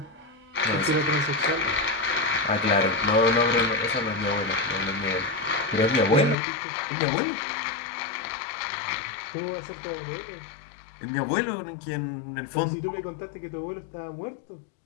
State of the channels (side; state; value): right; drops out; at 6.4 s